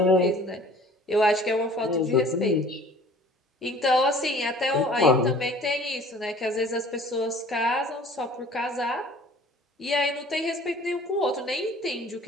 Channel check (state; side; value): normal; both; correlation 0.49